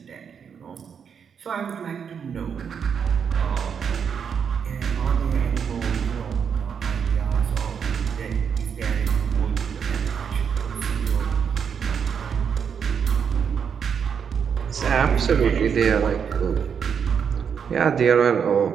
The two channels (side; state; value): left; quieter; 7.1 dB